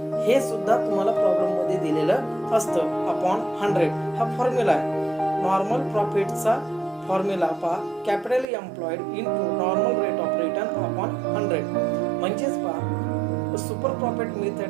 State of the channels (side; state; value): left; drops out; at 8.5 s